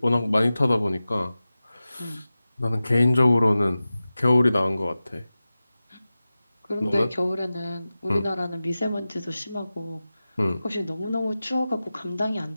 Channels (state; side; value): inverted; both; correlation -0.95